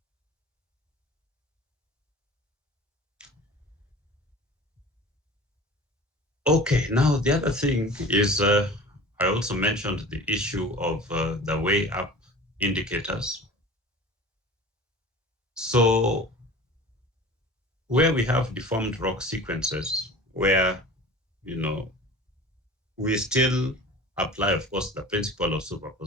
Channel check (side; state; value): both; normal; correlation 0.40